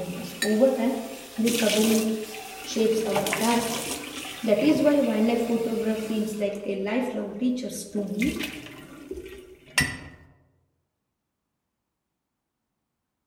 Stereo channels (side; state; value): both; identical; correlation 1.00